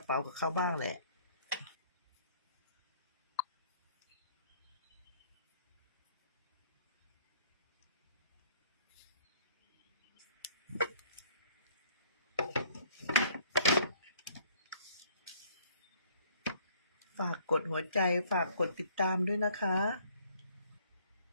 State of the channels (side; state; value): both; inverted; correlation -0.60